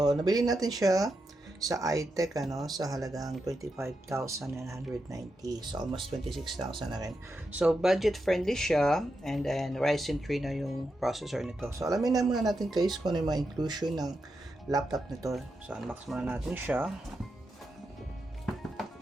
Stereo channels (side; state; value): both; normal; correlation 0.86